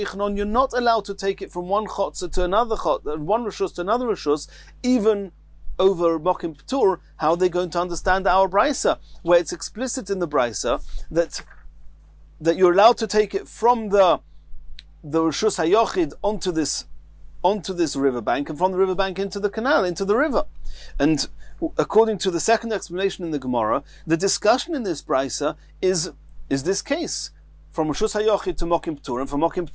you're not allowed to take it from one chotzer to another chotzer, one rishus to another rishus, even over Mokim P'tur. How are they going to understand our brisa, where it's explicit in the brisa that you're allowed to take it from the rishus hayochid onto this riverbank, and from the riverbank into the canal, into the river. And according to the second explanation in the Gemara, the discussion in this brisa is this case, from Rishus HaYochid to Mokim P'tur, and from Mokim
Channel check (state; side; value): identical; both; correlation 1.00